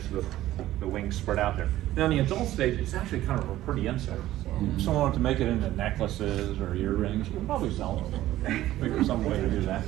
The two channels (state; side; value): quieter; left; 14.6 dB